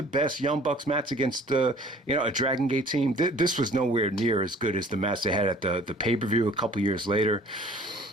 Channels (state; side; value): normal; both; correlation 0.51